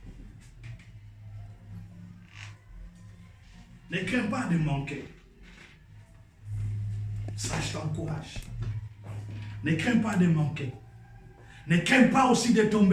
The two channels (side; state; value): both; identical; correlation 1.00